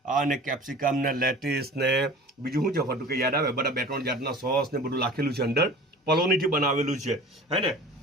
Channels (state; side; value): normal; both; correlation 0.41